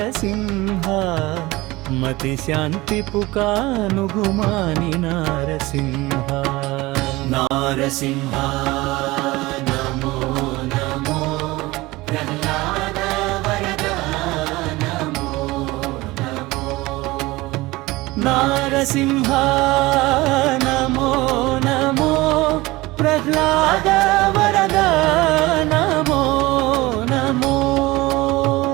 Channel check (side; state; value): left; quieter; 20.4 dB